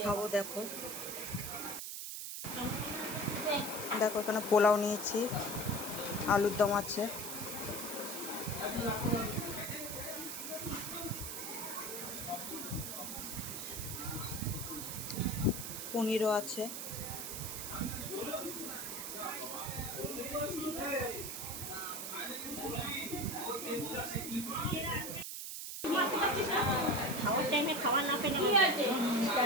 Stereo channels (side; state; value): right; noise; hiss, 6 dB below the sound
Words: খাবো দেখো। দেখো এখানে পোলাও নিয়েছি, আলুর দম আছে, পনিরও আছে, খাওয়ার টাইমে খাওয়া না পেলে